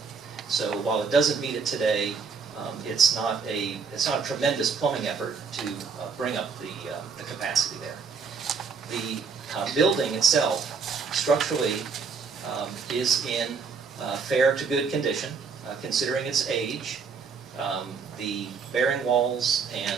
So while it doesn't meet it today, it's not a tremendous plumbing effort to bring up the capacity there. The building itself, structurally, is in fair to good condition, considering its age. The bearing walls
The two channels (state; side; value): quieter; left; 5.4 dB